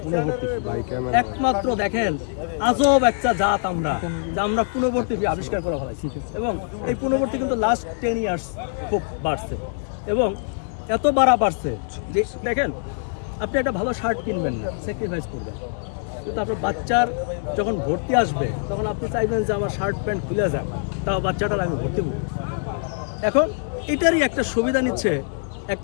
পুনর্ভর্তি ফি। একমাত্র দেখেন আজব একটা জাত আমরা, যে আমরা পুনর্ভর্তি ফি আবিষ্কার করা হয়। এবং এই পুনর্ভর্তি কিন্তু লাস্ট 10 ইয়ার্স খুব বাড়ছে, এবং এত বাড়ছে যে দেখেন আপনি একটা ভালো শার্ট কিনবেন না, স্যাক্রিফাইস করবেন, কিন্তু আপনার বাচ্চার যখন ভর্তি আসবে তখন আপনি চাইবেন যে আমার শার্ট প্যান্ট খুলে যাক, তাও বাচ্চাটার আমি ভর্তি করব। এখন এটারই একটা সুবিধা নিচ্ছে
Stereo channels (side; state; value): right; silent; 63 dB below the other